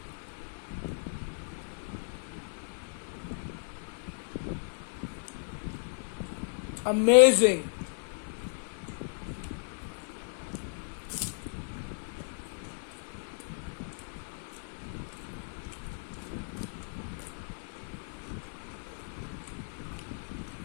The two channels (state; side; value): silent; right; digital silence